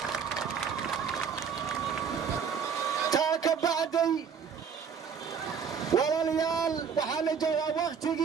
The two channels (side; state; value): left; quieter; 6.8 dB